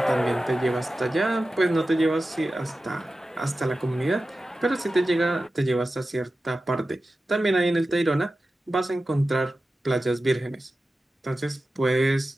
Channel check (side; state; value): both; normal; correlation 0.94